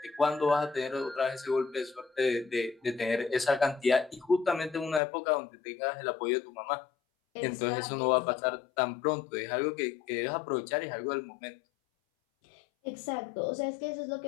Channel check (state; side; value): drops out; right; at 5.0 s